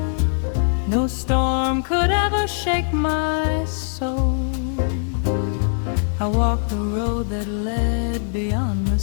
No storm could ever shake my soul. I walked the road that led beyond the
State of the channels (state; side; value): silent; right; digital silence